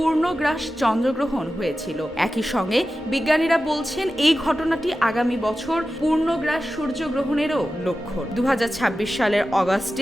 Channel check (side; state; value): both; normal; correlation 0.93